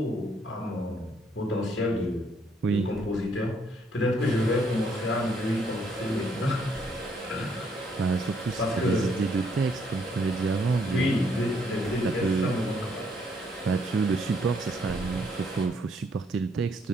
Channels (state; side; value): normal; both; correlation 0.70